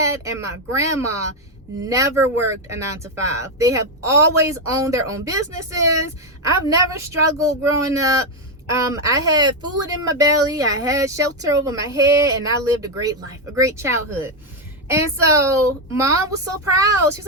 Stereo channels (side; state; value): both; normal; correlation 0.05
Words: and my grandma never worked a 9-to-5. They have always owned their own businesses. I've never struggled growing up. I had food in my belly, I had shelter over my head, and I lived a great life, a great childhood. And so mom was so proud. She's